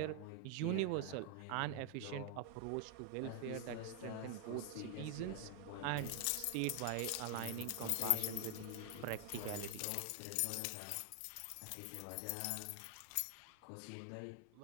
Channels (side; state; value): both; different; correlation 0.01